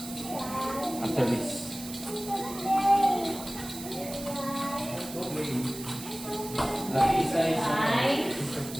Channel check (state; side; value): noise; right; hiss, 12 dB below the sound